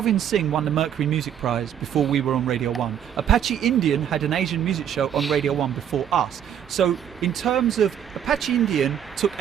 Singh won the Mercury Music Prize before we were on Radio 1. Apache Indian had an Asian music show on Radio 1 before us. So in terms of Apache Indian took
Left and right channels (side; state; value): left; quieter; 9.4 dB